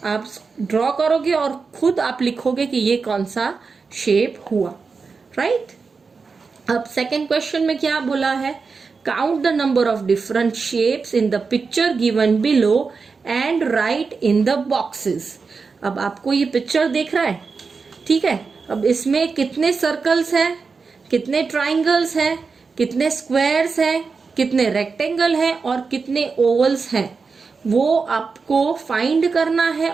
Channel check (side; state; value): left; quieter; 4.8 dB